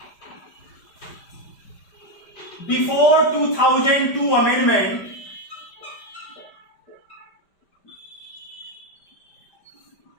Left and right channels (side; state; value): right; late; 5.0 ms